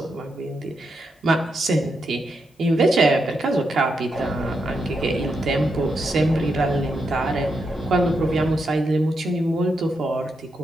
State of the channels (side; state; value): both; normal; correlation 0.83